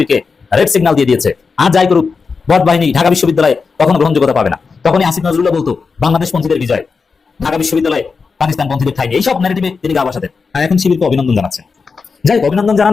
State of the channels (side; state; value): right; quieter; 4.9 dB